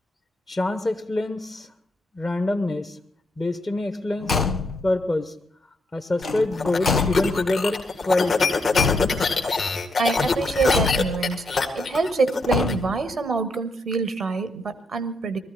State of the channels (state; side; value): normal; both; correlation 0.77